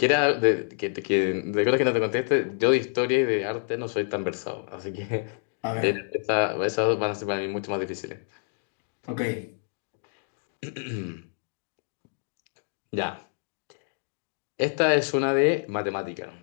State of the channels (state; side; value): silent; right; digital silence